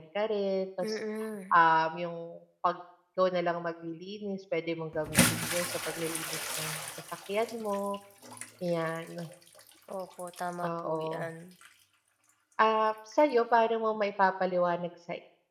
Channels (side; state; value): both; identical; correlation 1.00